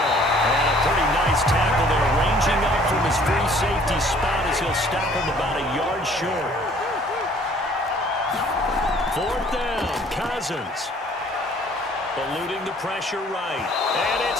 And a pretty nice tackle there, ranging up from his free safety spot as he'll stop him about a yard short. 4th down, Cousins. Eluding the pressure right. And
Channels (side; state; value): both; normal; correlation 0.56